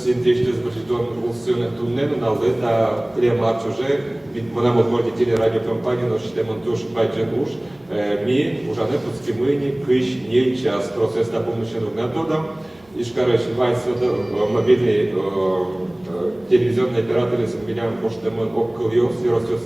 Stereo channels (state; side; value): noise; right; hum, 30 dB below the sound